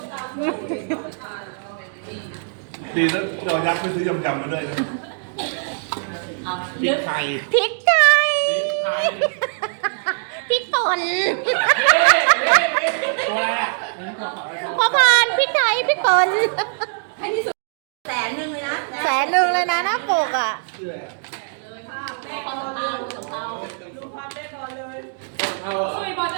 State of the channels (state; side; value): silent; left; digital silence